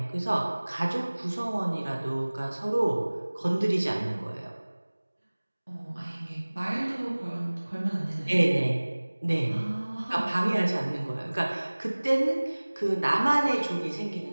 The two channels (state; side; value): inverted; both; correlation -1.00